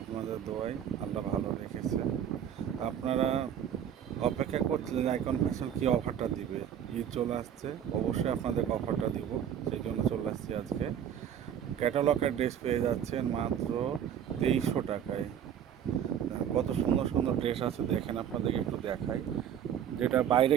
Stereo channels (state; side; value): quieter; left; 9.2 dB